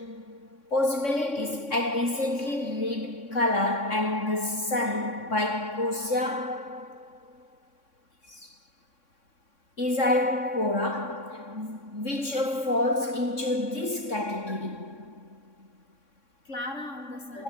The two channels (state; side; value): late; right; 3.6 ms